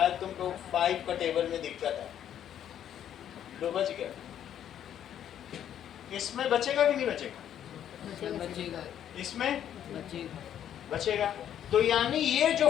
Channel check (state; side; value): quieter; right; 10.2 dB